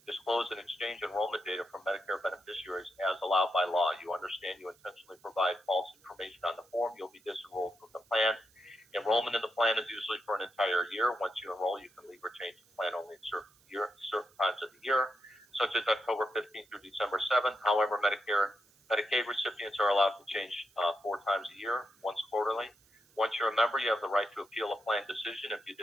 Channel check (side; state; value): right; noise; hiss, 30 dB below the sound